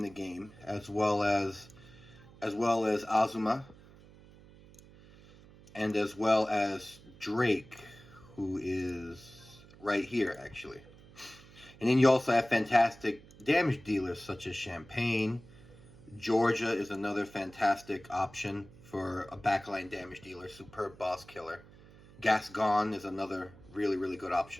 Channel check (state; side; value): noise; right; hum, 22 dB below the sound